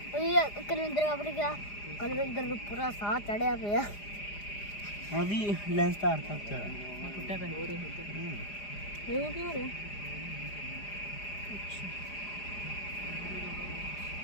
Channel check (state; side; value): late; right; 4.9 ms